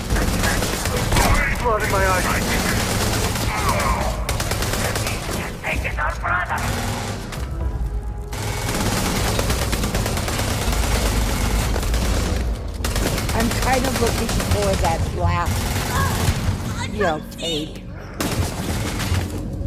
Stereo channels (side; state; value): both; identical; correlation 1.00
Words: Blood in my eyes. Taking our brother! I'm kind of looking for that last, you know, tape.